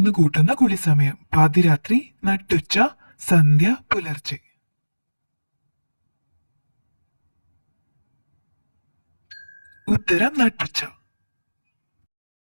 കൂട്ടുന്ന കുളിസമയം. പാതിരാത്രി, നട്ടുച്ച, സന്ധ്യ, പുലർച്ചെ. ഉത്തരം നട്ടുച്ച.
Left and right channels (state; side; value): inverted; both; correlation -1.00